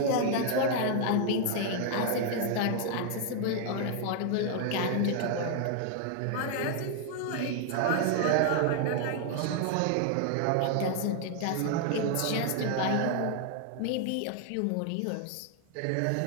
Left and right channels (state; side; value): different; both; correlation 0.00